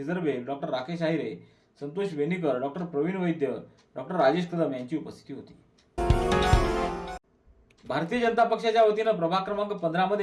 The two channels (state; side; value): identical; both; correlation 1.00